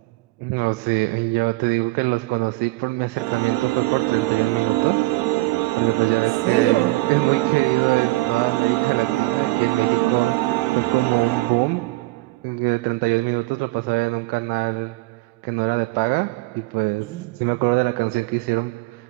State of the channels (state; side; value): quieter; left; 20.7 dB